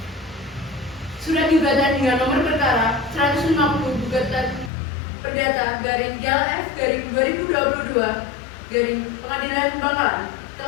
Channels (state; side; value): drops out; right; at 4.7 s